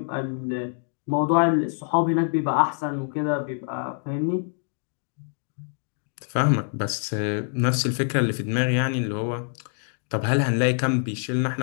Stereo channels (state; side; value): silent; right; 60 dB below the other